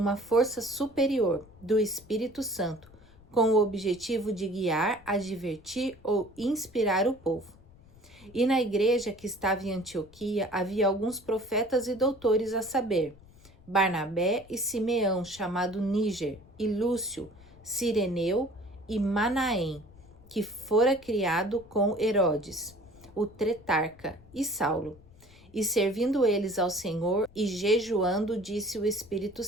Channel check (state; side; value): noise; left; rumble, 24 dB below the sound